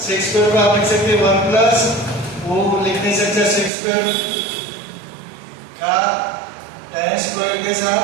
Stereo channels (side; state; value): left; drops out; at 3.7 s